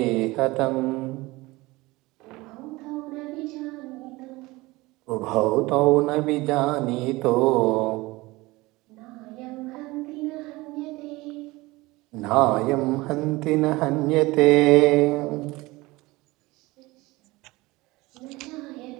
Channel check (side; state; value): left; quieter; 21.2 dB